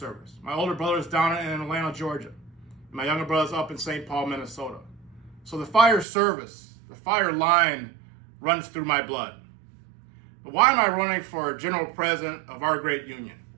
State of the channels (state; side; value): drops out; left; at 6.1 s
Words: My older brother is down in Atlanta, Georgia. And my younger brother is up in St. Paul, Minnesota. So the fire service, the fire line runs through my blood. But why am I running for general president of our great union?